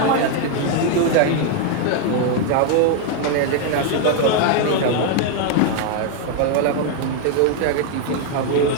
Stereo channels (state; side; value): different; both; correlation 0.01